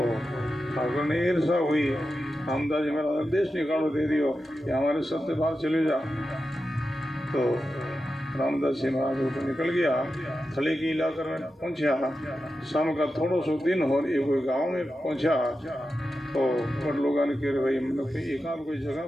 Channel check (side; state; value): both; normal; correlation 0.90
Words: ठाकर ने ईर्षा हुई, रामदास जी महाराज देश निकालो दे दियो कि हमारे सत्य बाहर चले जा। तो रामदास जी महाराज ऊपर निकल गया, थले की इलाके में पहुंचा। शाम का थोड़ा सो दिन हो, एक कोई गाँव में पहुंचा। तो बड़ लोगों ने कह भाई मतलब कोई एकांत कोई जगह